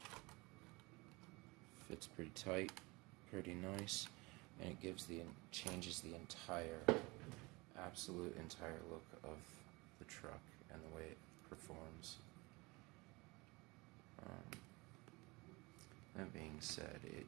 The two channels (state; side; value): quieter; left; 24.5 dB